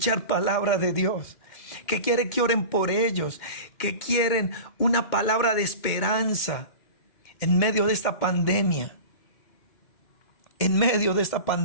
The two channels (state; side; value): late; right; 2.1 ms